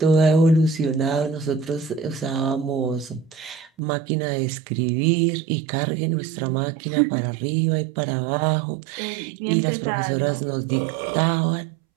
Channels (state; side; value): drops out; left; at 3.8 s